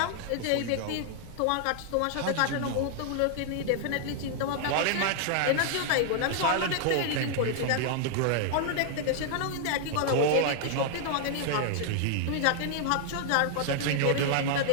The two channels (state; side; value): different; both; correlation 0.00